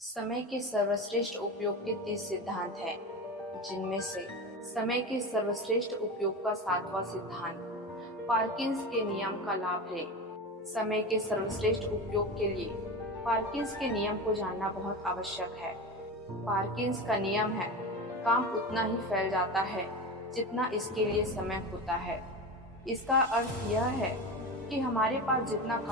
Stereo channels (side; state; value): both; normal; correlation 0.25